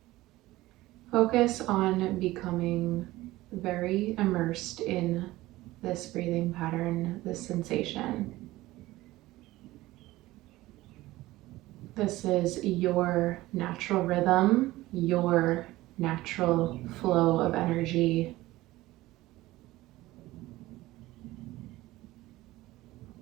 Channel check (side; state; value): left; quieter; 17.7 dB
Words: Focus on becoming very immersed in this breathing pattern, this sensation. This is your natural rhythm, your natural flow of energy.